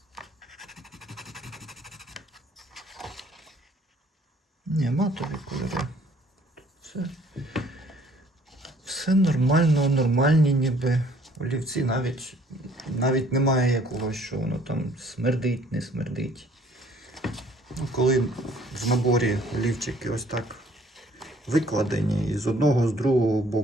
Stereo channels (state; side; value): normal; both; correlation 0.59